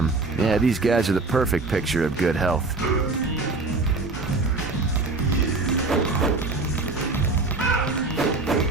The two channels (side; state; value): left; quieter; 3.5 dB